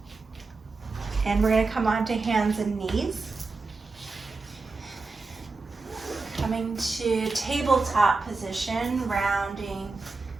And we're going to come onto hands and knees. Coming to tabletop position, rounding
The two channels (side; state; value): left; quieter; 3.9 dB